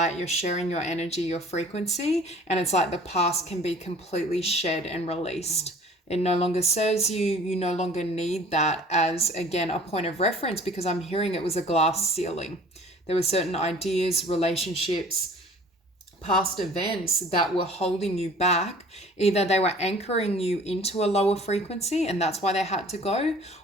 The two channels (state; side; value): normal; both; correlation 0.49